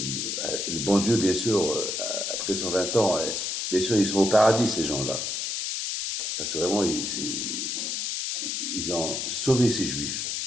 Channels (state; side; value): noise; left; hiss, 2 dB below the sound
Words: bon Dieu, bien sûr, après 120 ans, bien sûr, ils sont au paradis, ces gens-là. Parce que vraiment, ils ont sauvé ces Juifs.